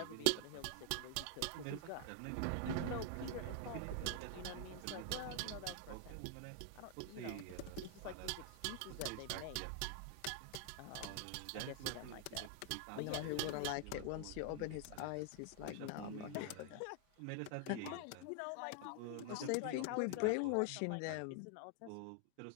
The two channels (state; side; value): different; both; correlation 0.00